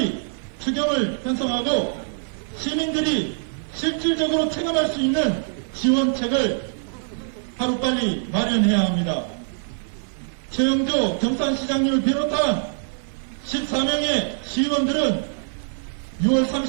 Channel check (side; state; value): left; silent; 58 dB below the other